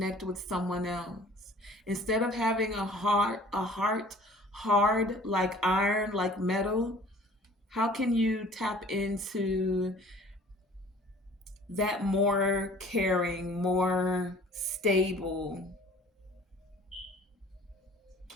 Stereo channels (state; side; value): normal; both; correlation 0.50